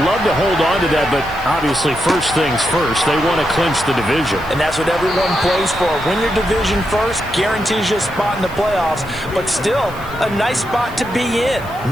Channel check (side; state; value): right; noise; hiss, 22 dB below the sound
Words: love to hold on to that, but obviously first things first. They want to clinch the division. And that's what everyone plays for. Win your division first, guarantees you a spot in the playoffs, but still a nice spot to be in.